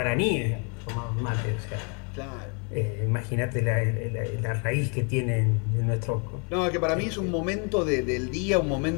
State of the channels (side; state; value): right; quieter; 36.2 dB